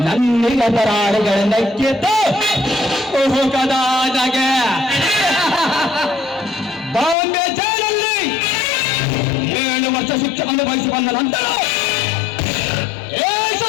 ನನ್ನಿಗ ಪರಾಳಿಗಳ ನಕ್ಕಿದ್ದು ಹೋಗದಾಗೆ ಬಾಂಬೆ ಜೈಲಲ್ಲಿ 7 ವರ್ಷ ಶಿಕ್ಷೆ ಅನುಭವಿಸಿ ಬಂದ ನಂತರ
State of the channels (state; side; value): drops out; right; at 7.2 s